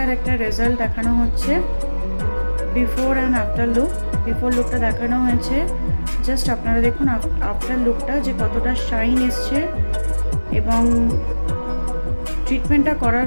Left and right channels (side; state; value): both; inverted; correlation -1.00